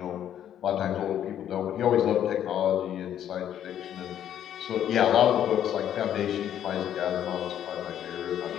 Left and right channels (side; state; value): right; quieter; 10.4 dB